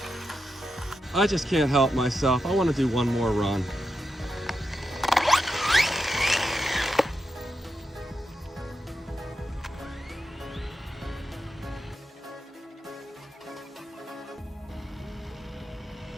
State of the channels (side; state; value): both; normal; correlation 0.87